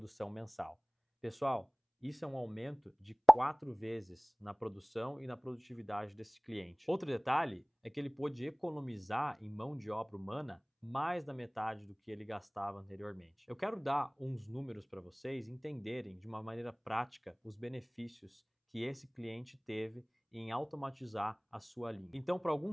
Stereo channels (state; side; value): identical; both; correlation 1.00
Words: mensal. Pessoal, isso é um aumento de 4 vezes na produção e na produtividade desse cliente. Outro detalhe é que ele pôde economizar em mão de obra humana mais da metade do que ele gastava anteriormente. Eu quero dar uns números para vocês entenderem de uma maneira prática os benefícios que esse cliente teve em automatizar a sua linha. Então, para